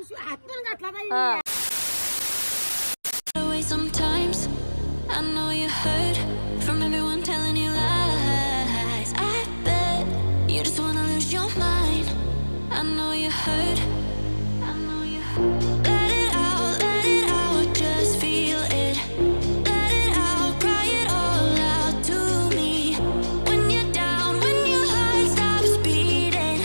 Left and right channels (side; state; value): both; inverted; correlation -1.00